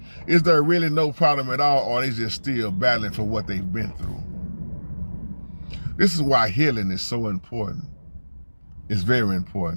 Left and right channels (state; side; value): inverted; both; correlation -1.00